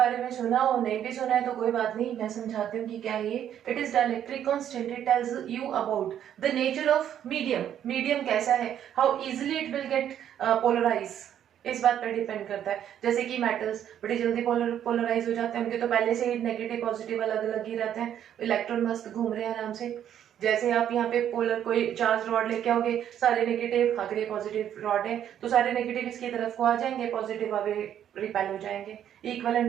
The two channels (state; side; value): quieter; left; 10.1 dB